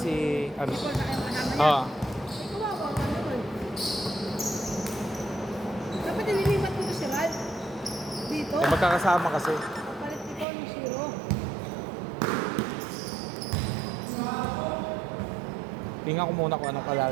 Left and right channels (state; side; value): drops out; left; at 10.5 s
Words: ano. Ikaw na kayo kasama niya. Oo. Ay, kawawa ka naman. Dapat nililipat mo si Rad. Dito. Eh, magkakasama kasi. Palit ikaw ng zero. Tingnan ko muna kung anong